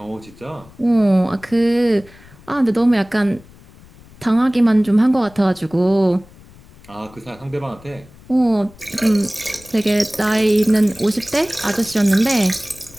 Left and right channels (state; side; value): noise; left; rumble, 24 dB below the sound